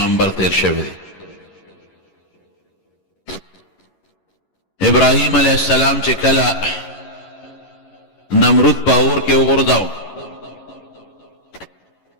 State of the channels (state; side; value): late; right; 11 ms